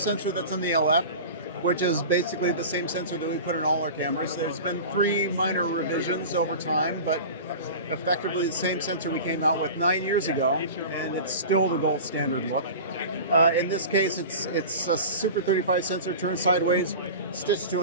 that's in the LF, which is basically the same sensor that we put in all our cameras. There's been 3 minor revisions over time, but effectively the same sensor we came out with 9 years ago, and it's still the gold standard look. In this case, it's a Super 35 sensor turned sideways, stitched to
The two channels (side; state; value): both; inverted; correlation -0.33